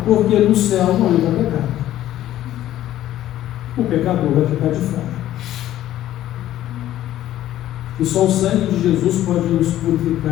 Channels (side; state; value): right; quieter; 13.2 dB